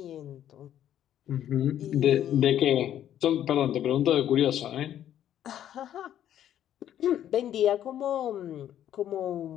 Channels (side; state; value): right; quieter; 11.0 dB